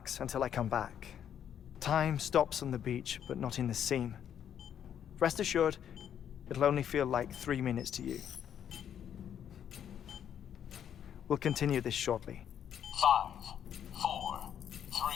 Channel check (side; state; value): right; quieter; 9.3 dB